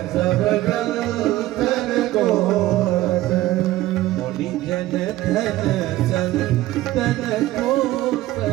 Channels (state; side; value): quieter; left; 16.0 dB